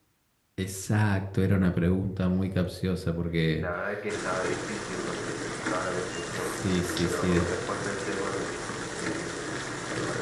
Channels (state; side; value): identical; both; correlation 1.00